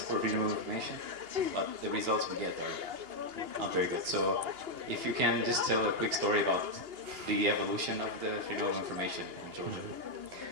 for freedom of information, but the results we get are not very good. So if you can just tell a quick story about the evolution of the freedom of information in Georgia.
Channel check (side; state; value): left; late; 2.8 ms